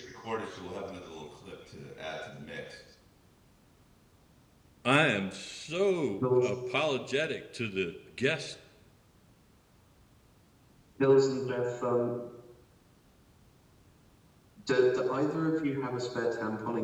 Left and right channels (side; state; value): both; identical; correlation 1.00